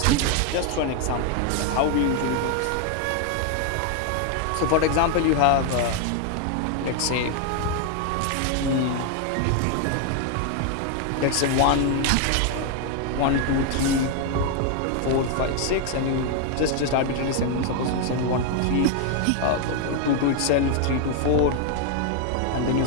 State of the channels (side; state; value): both; different; correlation 0.00